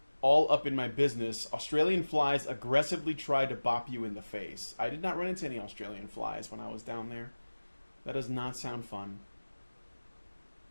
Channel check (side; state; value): both; inverted; correlation -1.00